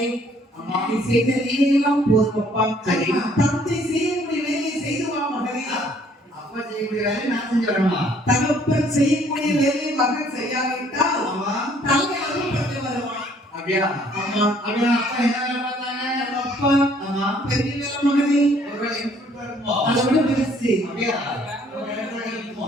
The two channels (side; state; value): both; normal; correlation 0.61